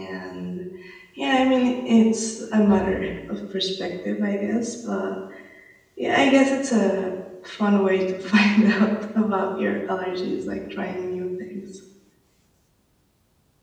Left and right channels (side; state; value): both; identical; correlation 1.00